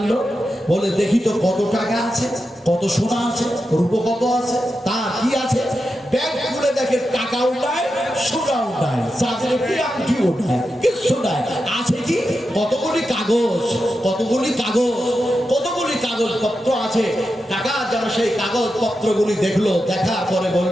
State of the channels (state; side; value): normal; both; correlation 0.89